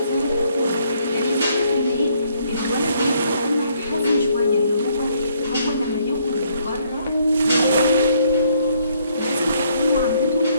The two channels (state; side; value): inverted; both; correlation -0.68